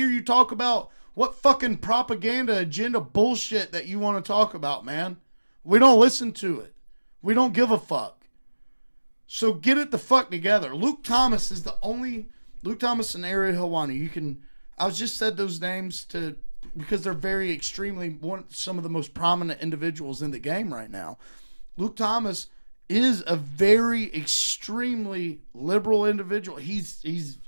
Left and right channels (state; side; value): inverted; both; correlation -1.00